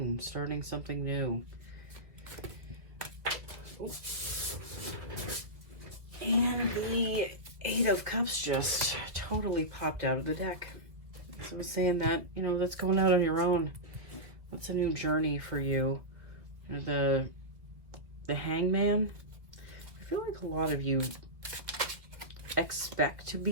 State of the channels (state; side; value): late; left; 1.7 ms